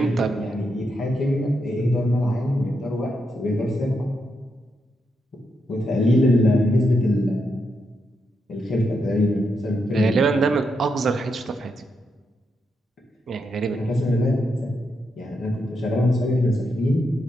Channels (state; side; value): normal; both; correlation 0.82